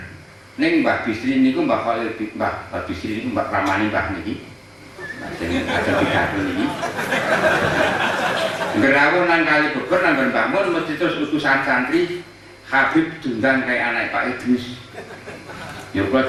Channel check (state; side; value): identical; both; correlation 1.00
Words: Ning Mbah Bisri niku Mbah Khalil Mbah Bisri niku Mbah ramane Mbah niki. Sing ada pidato niki. Gerawuh nang kali Beber nang Mbah Mun mesti terus utusan santri Habib diundang kayak anak Pak Idris. Ya